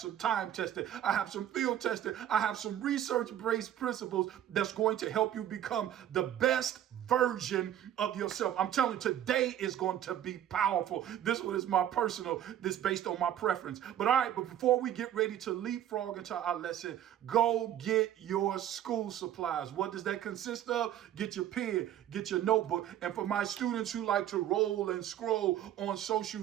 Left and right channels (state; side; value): quieter; left; 11.2 dB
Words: time tested, I have some field tested, I have some research-based principles that's going to help you become the best version of yourself. I'm telling you, today is going to be powerful. This one is my personal, this based on my preference. But all right, but before we get ready to leapfrog into our lesson, go get your school supplies. What does that consist of? Get your pen, get your notebook. And for my students who like to roll and scroll on social